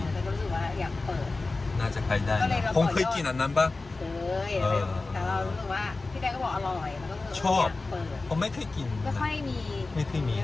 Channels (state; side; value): quieter; right; 3.5 dB